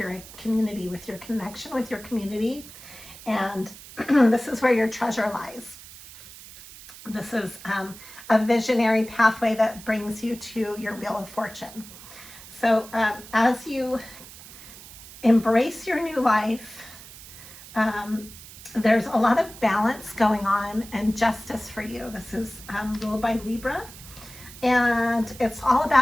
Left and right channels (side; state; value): right; noise; hiss, 17 dB below the sound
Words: community, with your connection with your community, and this is where your treasure lies. This is a visionary pathway that brings you to your wheel of fortune. So as you embrace your new life, there's a lot of balance going on and justice for you. This is ruled by Libra, and it's all